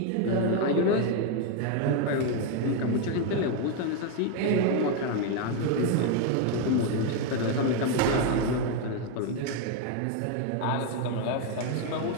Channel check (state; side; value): different; both; correlation 0.01